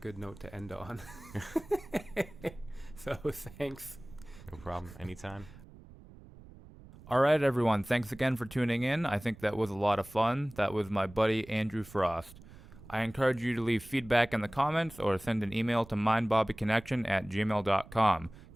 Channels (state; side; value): noise; right; rumble, 19 dB below the sound